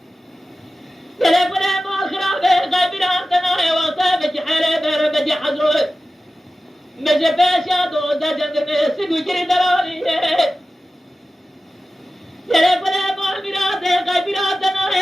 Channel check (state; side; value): normal; both; correlation 0.95